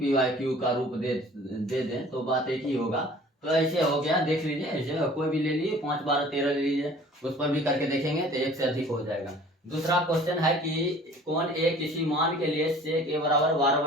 वाई क्यू का रूप दे दें तो बात एक ही होगा। तो ऐसे हो गया, देख लीजिए, ऐसे कोई भी ले लीजिए 5 12 13 ले लीजिए, उस पर भी करके देखेंगे तो 1 से अधिक हो जाएगा। दूसरा क्वेश्चन है कि कौन ए किसी मान के लिए sec a बराबर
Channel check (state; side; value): normal; both; correlation 0.49